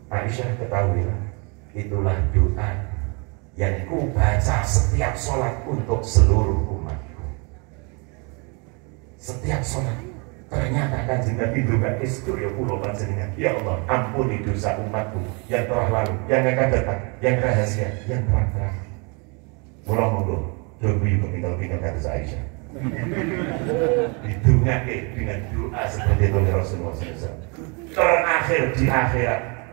Aisyah, ketahuilah, itulah doa yang ku baca setiap sholat untuk seluruh umatku. Setiap sholat. Ternyata Kanjeng Nabi juga istri kula panjenengan. Ya Allah, ampuni dosa umatku yang telah lalu, yang akan datang, yang rahasia, yang terang-terang. Mula monggo doa kepinggal-pinggal kata Aisyah. Didongake dengan doa seperti itu Rasulullah SAW. Terakhir di akhirat.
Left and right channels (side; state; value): left; quieter; 32.5 dB